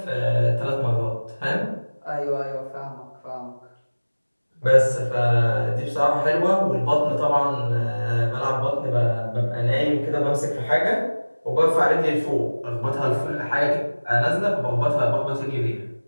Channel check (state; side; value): inverted; both; correlation -1.00